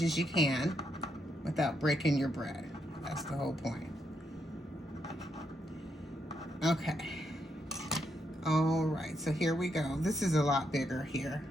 as you can without breaking your bread. That's the whole point. Okay. All right, so here we go. This is a lot bigger here.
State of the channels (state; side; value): normal; both; correlation 0.79